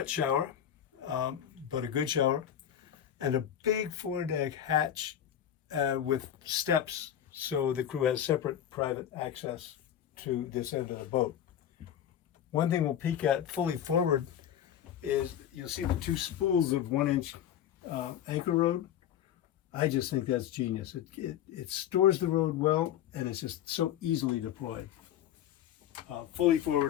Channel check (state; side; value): quieter; right; 10.3 dB